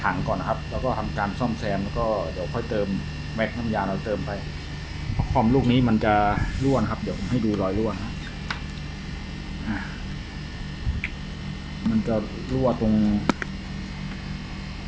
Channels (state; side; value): identical; both; correlation 1.00